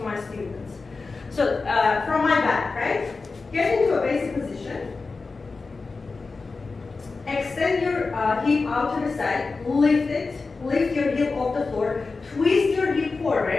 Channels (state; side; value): quieter; right; 4.1 dB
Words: my students. So, from my back, right? Get into a basic position. Extend your hip out to the side, lift it, lift your hip off the floor, twist your hip